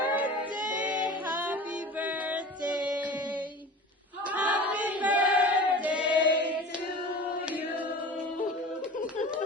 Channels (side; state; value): both; normal; correlation 0.37